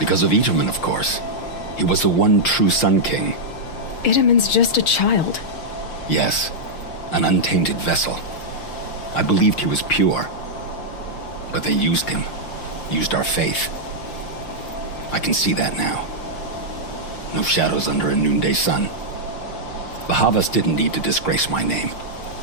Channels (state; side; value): late; right; 6.4 ms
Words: of Itaman, of course. He was the one true Sun King. Itaman's just a child. Yes, an untainted vessel. I believed he was pure. But they used him. Used our faith. I can see that now. No shadows under a noonday sun. Bahavas didn't need to disgrace my name.